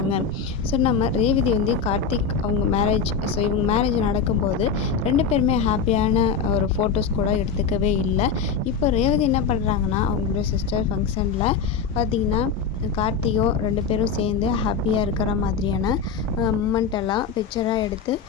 ஸோ நம்ம ரேவதி கார்த்திக் அவங்க மேரேஜ் இவங்க மேரேஜ் நடக்கும்போது 2 பேருமே ஹாப்பியான ஒரு ஃபோட்டோஸ் கூட எடுத்துக்கவே இல்லை. இப்போ ரேவதி என்ன பண்ணுறாங்கன்னா அவங்களோட சிஸ்டர் ஃபங்க்ஷனில் பார்த்திங்கன்னா கார்த்திகோ 2 பேரும் சேர்ந்து ஹாப்பியாக இருக்கிற மாதிரியான மூமெண்ட் எல்லாம் பிக்சராக எடுத்து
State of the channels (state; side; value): quieter; right; 5.9 dB